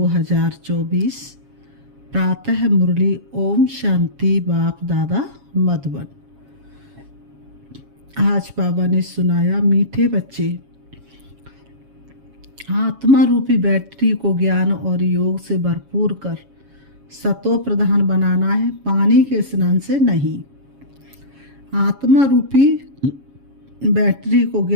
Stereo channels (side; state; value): left; late; 7.3 ms